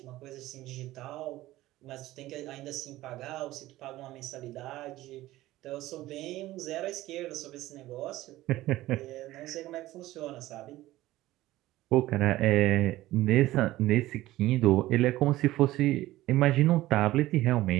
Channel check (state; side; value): quieter; left; 16.4 dB